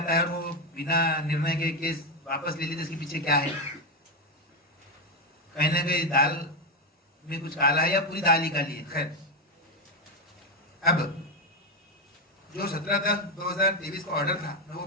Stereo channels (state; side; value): normal; both; correlation 0.08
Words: है और वो बिना निर्णय के केस वापस ले लेते, इसके पीछे क्या है? कहीं ना कहीं दाल में कुछ काला है या पूरी दाल ही काली है। खैर, अब जो 17/10/2023 का ऑर्डर था मैं वो